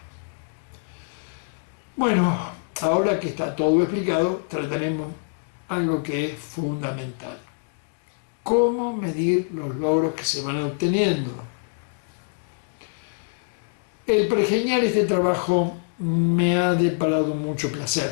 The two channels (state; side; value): silent; right; digital silence